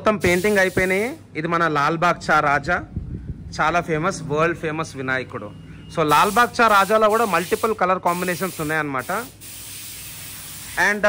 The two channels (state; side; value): identical; both; correlation 1.00